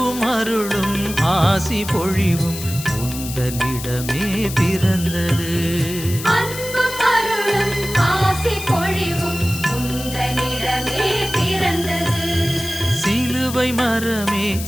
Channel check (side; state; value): left; noise; hiss, 10 dB below the sound